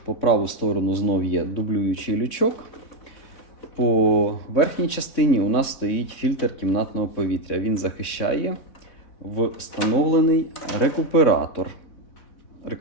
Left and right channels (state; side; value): late; right; 3.7 ms